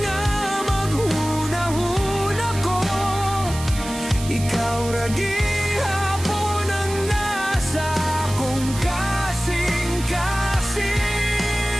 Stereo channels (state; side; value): noise; right; hiss, 12 dB below the sound